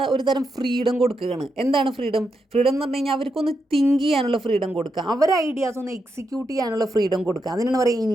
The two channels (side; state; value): both; normal; correlation 0.84